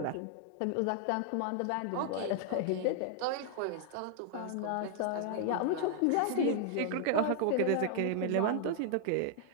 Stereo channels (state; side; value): different; both; correlation 0.00